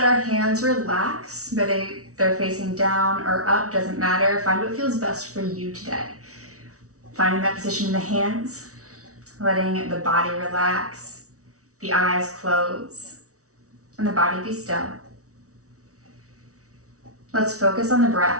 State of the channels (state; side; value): late; left; 0.65 ms